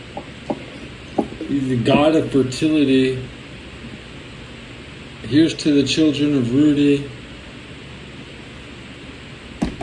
He's the god of fertility. Here's to the children of Rudy,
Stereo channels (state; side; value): identical; both; correlation 1.00